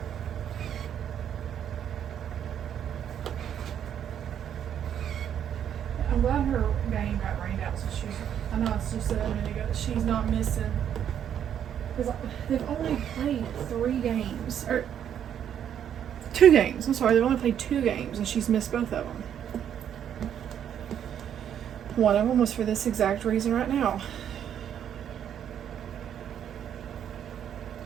I'm glad her game got rained out, so she's, I know I just said a minute ago that she's not missing. Because they've only played 3 games, or 2 games, I'm sorry, they've only played 2 games and she's missed both of them. One of them was for this exact reason right now.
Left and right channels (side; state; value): left; quieter; 9.4 dB